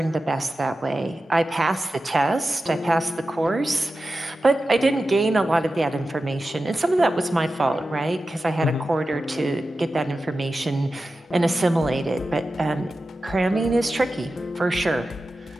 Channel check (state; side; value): normal; both; correlation 0.93